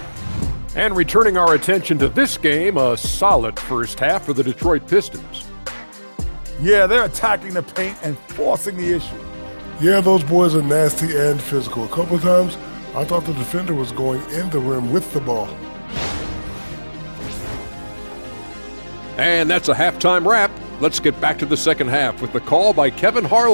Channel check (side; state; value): both; inverted; correlation -1.00